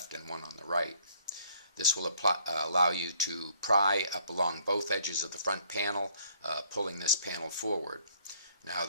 and one on the right. This will allow you to pry up along both edges of the front panel, pulling this panel forward. Now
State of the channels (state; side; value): inverted; both; correlation -0.62